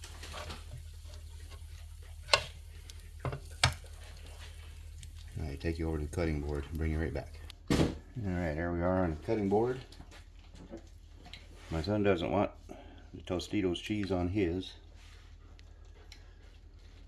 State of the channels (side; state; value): both; identical; correlation 1.00